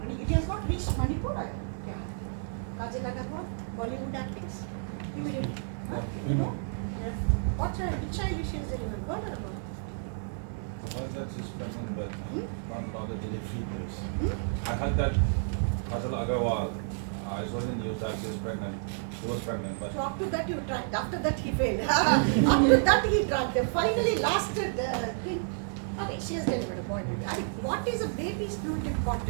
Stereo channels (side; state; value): left; silent; digital silence